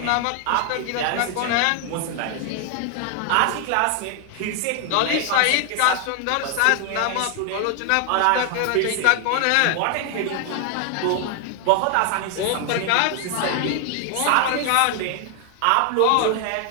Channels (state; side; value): different; both; correlation 0.01